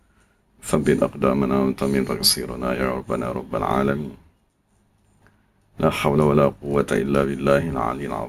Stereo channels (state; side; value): identical; both; correlation 1.00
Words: ثبت أقدامنا وانتمن تقصيرنا يا ربنا رب العالمين. لا حول ولا قوة إلا بالله العلي